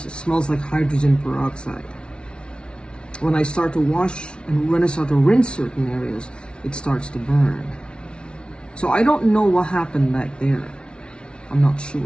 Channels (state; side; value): late; right; 0.057 ms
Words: It smells like hydrogen peroxide. When I start to wash and when I start to rinse certain areas, it starts to burn. So I don't know what happened back there. I'm not